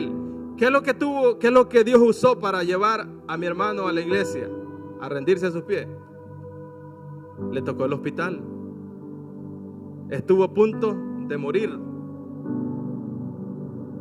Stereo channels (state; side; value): identical; both; correlation 1.00